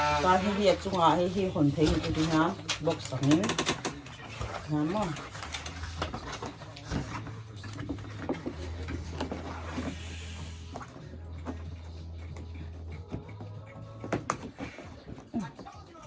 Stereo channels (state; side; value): identical; both; correlation 1.00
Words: ta hay việc chung à hay hồn thấy cái gì hả bọc sẵn lắm không